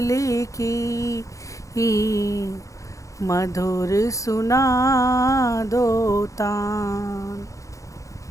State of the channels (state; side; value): late; right; 0.15 ms